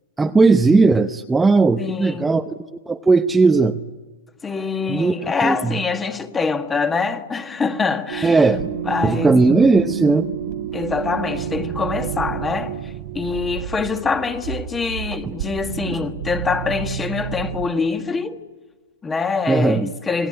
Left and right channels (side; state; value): both; normal; correlation 0.77